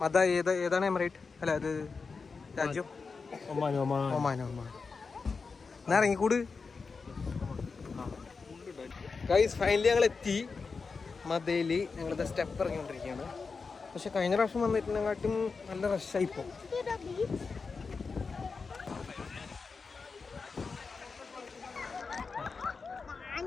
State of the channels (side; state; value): right; quieter; 4.7 dB